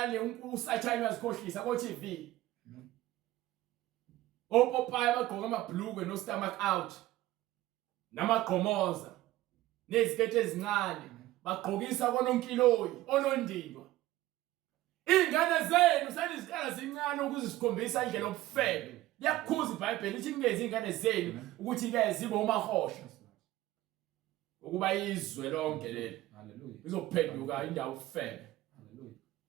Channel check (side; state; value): left; quieter; 16.1 dB